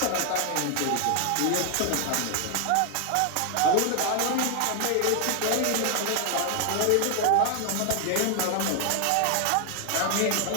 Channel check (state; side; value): different; both; correlation 0.00